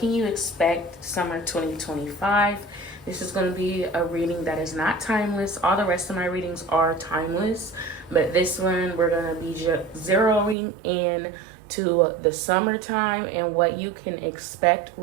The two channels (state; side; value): drops out; left; at 10.6 s